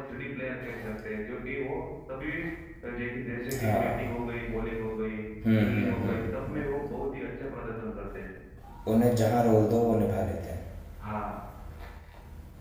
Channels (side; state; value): both; identical; correlation 1.00